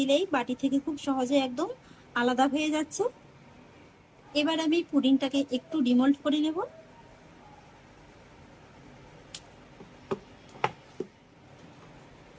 বাটি থেকে খুব সহজে একদম আলাদা হয়ে যাচ্ছে। এবার আমি পুডিংটাকে একটু ডিমোল্ড করে নেব।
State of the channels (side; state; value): both; identical; correlation 1.00